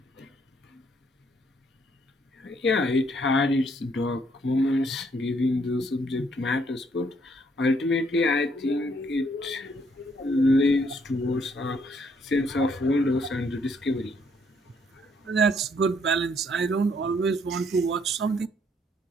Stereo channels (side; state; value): both; normal; correlation 0.68